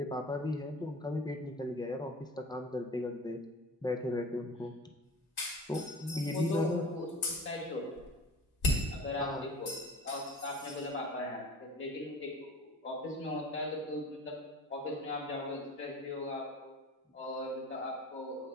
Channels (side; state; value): both; normal; correlation 0.40